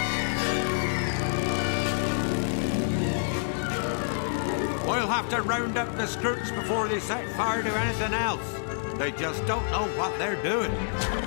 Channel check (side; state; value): right; silent; digital silence